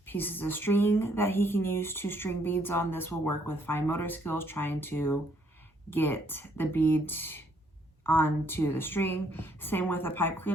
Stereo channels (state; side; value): normal; both; correlation 0.68